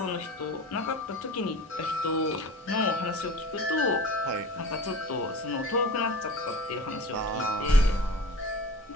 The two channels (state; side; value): normal; both; correlation 0.38